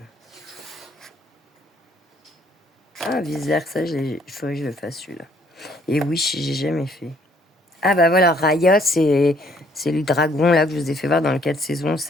vice versa, il faudrait que je le fasse celui-là. Et oui, j'ai jamais fait. Ah bah voilà, Raya, c'est le dragon là que je vous ai fait voir dans le 4 saisons.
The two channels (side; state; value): both; normal; correlation 0.64